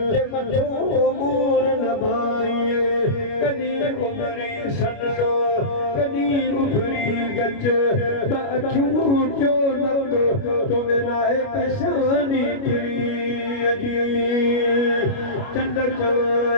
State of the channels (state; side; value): late; right; 29 ms